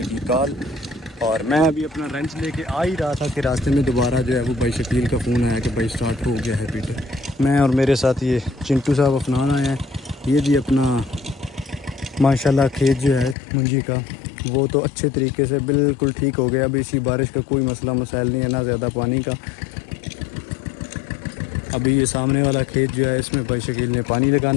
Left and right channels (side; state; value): right; drops out; at 13.4 s